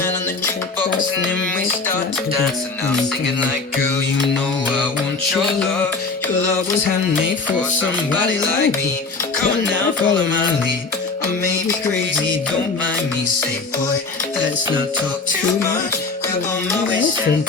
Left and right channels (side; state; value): right; quieter; 4.1 dB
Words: on the jukebox, and then we start to dance. And I'm singing like, girl, you know I want your love. Your love was handmade for somebody like me. Come on now, follow my lead. I may be crazy, don't mind me. Say, boy, let's not talk too much. Grab on my waist and